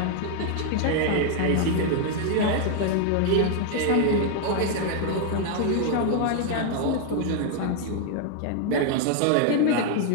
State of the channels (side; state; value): both; different; correlation 0.00